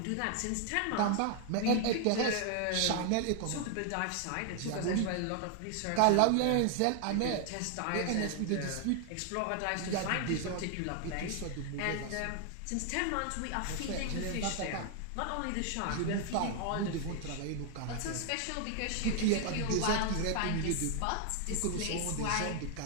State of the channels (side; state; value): both; different; correlation 0.00